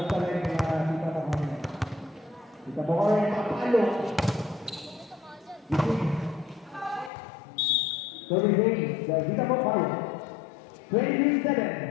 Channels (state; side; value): drops out; right; at 7.1 s